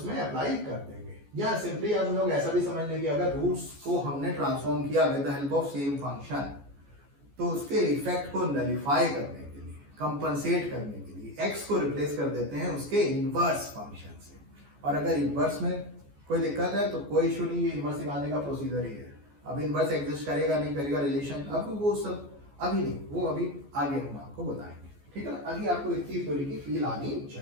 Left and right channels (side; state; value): left; late; 14 ms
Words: अप्लाई कर देंगे, या सिंपली हम लोग ऐसा भी समझ लेंगे अगर रूट्स को हमने ट्रांसफॉर्म किया with the help of same function तो उसके इफेक्ट को नलिफाई करने के लिए, कंपनसेट करने के लिए x को रिप्लेस कर देते हैं उसके इनवर्स फंक्शन से। और अगर इनवर्स में कोई दिक्कत है तो कोई इशू नहीं, ये इनवर्स निकालने का प्रोसीजर ही है। अब इनवर्स एग्जिस्ट करेगा नहीं करेगा रिलेशन, अब वो सब अभी नहीं, वो अभी आगे हम आपको बताएंगे। ठीक है ना, अभी आपको इतनी थ्योरी की फील आनी